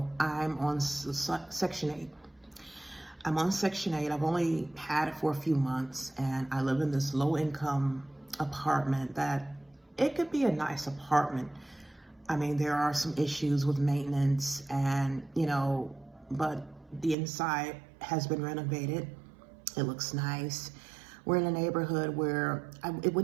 I'm on Section 8. I'm on Section 8. I've only had it for a few months, and I live in this low-income apartment that it could be a nice apartment. I mean, there are some issues with maintenance and, but the inside has been renovated. It looks nice. We're in a neighborhood where I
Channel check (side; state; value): left; drops out; at 17.2 s